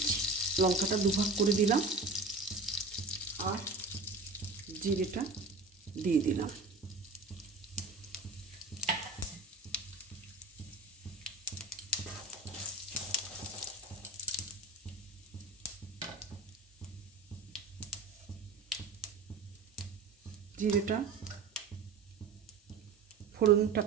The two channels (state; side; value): quieter; left; 3.8 dB